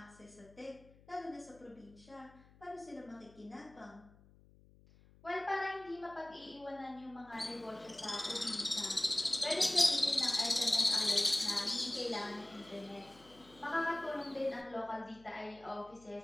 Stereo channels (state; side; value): noise; left; hum, 25 dB below the sound